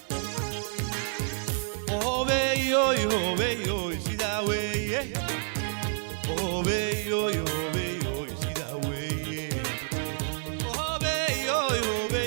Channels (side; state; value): left; silent; digital silence